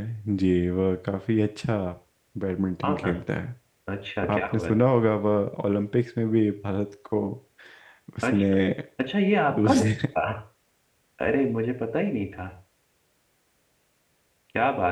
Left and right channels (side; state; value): both; identical; correlation 1.00